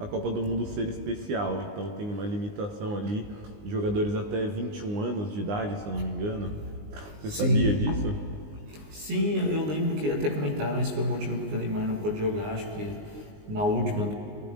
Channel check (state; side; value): late; left; 19 ms